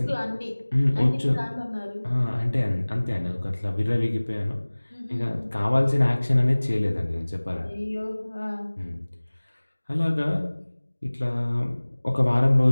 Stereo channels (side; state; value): both; inverted; correlation -1.00